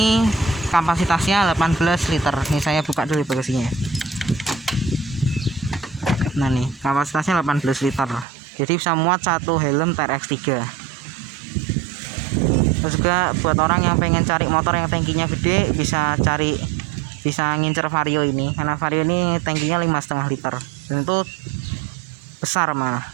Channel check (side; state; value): left; drops out; at 8.2 s